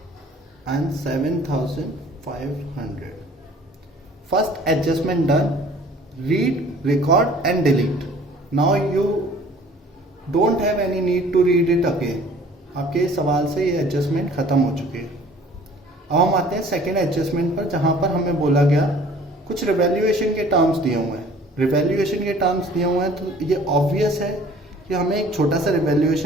and 7,500। First adjustment done, read, record and delete. Now you don't have any need to read it again. आपके सवाल से ये एडजस्टमेंट खत्म हो चुकी है। अब हम आते हैं सेकेंड एडजस्टमेंट पर, जहां पर हमें बोला गया कुछ रिवैल्यूएशन के टर्म्स दिए हुए हैं। रिवैल्यूएशन के टर्म्स दिए हुए हैं तो ये ऑब्वियस है कि हमें एक छोटा सा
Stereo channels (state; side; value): normal; both; correlation 0.51